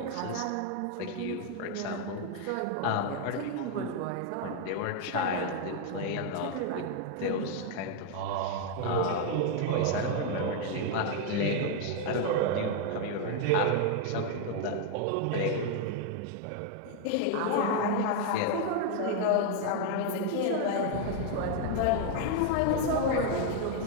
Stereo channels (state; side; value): different; both; correlation 0.00